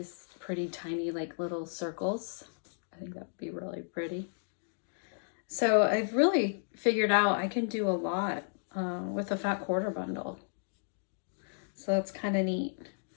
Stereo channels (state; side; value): silent; right; digital silence